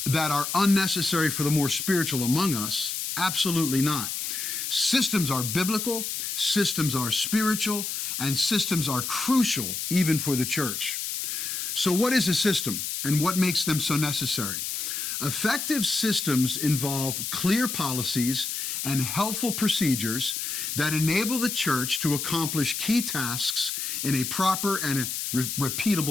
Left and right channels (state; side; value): noise; left; hiss, 3 dB below the sound